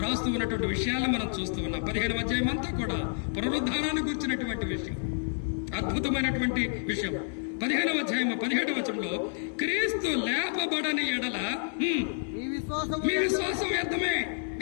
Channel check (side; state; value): right; silent; digital silence